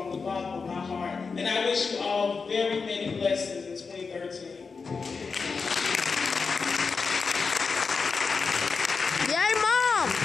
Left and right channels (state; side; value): quieter; right; 4.9 dB